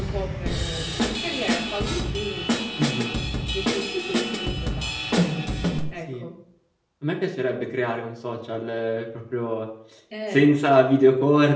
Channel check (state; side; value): identical; both; correlation 1.00